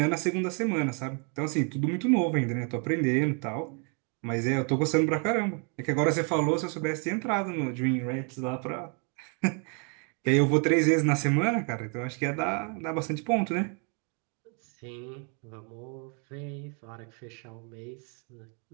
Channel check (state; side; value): quieter; left; 38.5 dB